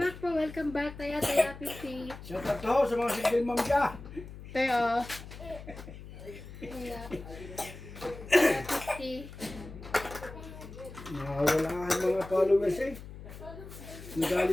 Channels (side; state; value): left; noise; hum, 14 dB below the sound